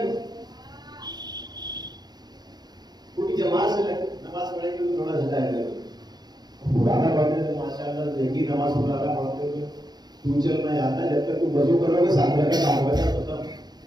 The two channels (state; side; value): late; left; 0.20 ms